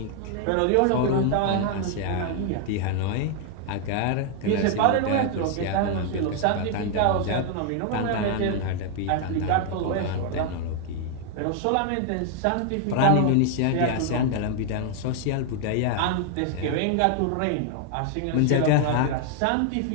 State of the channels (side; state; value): both; different; correlation 0.00